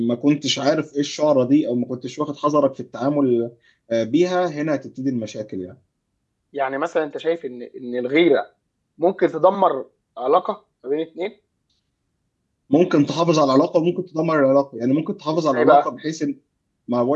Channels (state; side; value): identical; both; correlation 1.00